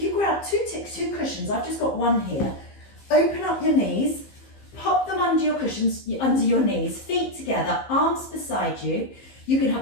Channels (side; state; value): right; late; 15 ms